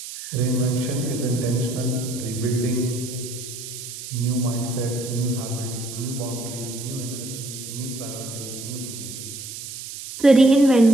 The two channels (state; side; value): noise; right; hiss, 10 dB below the sound